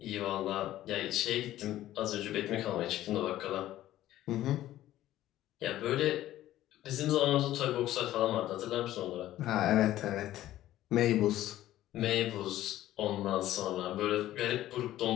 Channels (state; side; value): quieter; right; 14.0 dB